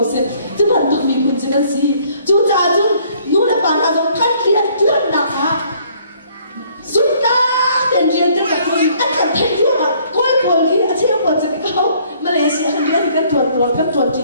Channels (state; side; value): inverted; both; correlation -0.62